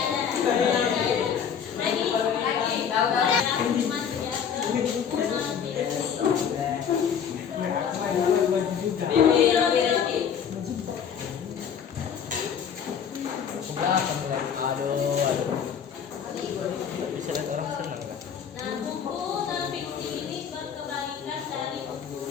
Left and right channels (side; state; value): right; quieter; 7.6 dB